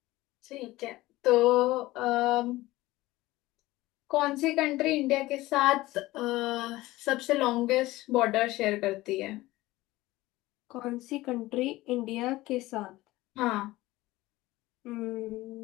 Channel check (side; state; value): right; quieter; 18.3 dB